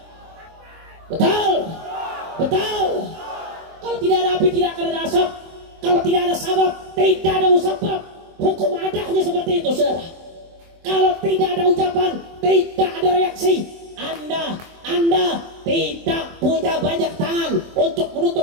Betul? Betul? Kalau tidak ada api, tidak akan ada asap. Kalau tidak ada sabab, tidak ada musabab. Hukum adanya seperti itu, saudara. Kalau tidak ada ucapan, tidak ada reaksi. Anda tidak punya banyak tangan untuk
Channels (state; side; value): late; left; 24 ms